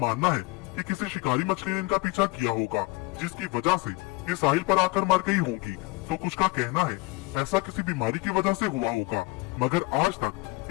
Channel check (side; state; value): right; quieter; 23.7 dB